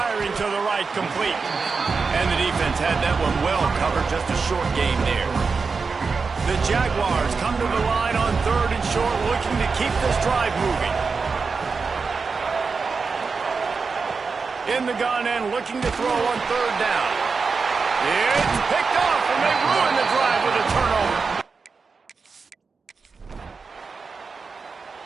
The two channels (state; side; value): quieter; left; 4.8 dB